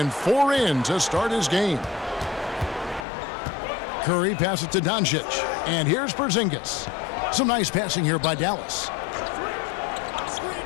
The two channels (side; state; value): right; drops out; at 3.1 s